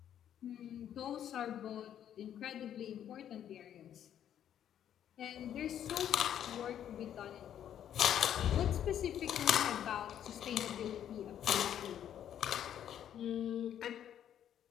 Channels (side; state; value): right; quieter; 10.1 dB